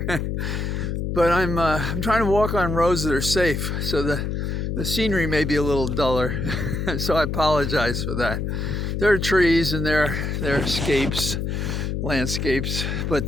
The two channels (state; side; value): noise; left; hum, 2 dB below the sound